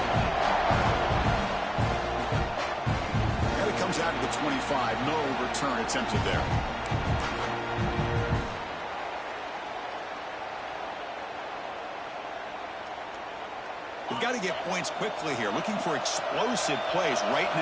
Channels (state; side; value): identical; both; correlation 1.00